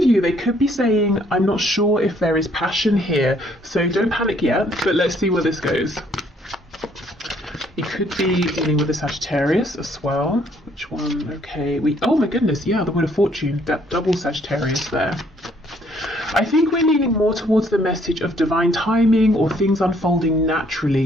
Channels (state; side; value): normal; both; correlation 0.65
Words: you, they could be saying, I'm not sure if there is passion here, so don't panic yet, but let's see where this goes. It could be dealing with a Sagittarius as well. Which one? Okay, oh my goodness, yeah, the Wheel of Fortune, that double Sagittarius there. I think we're leaning more towards the message of divine timing or things unfolding